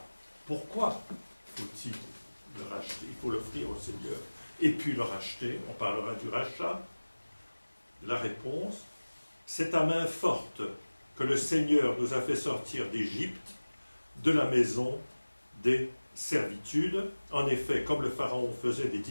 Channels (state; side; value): inverted; both; correlation -1.00